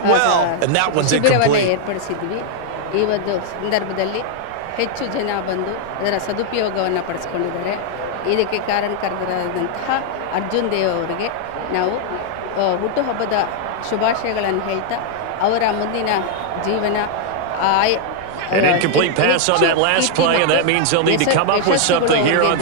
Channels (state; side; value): different; both; correlation 0.00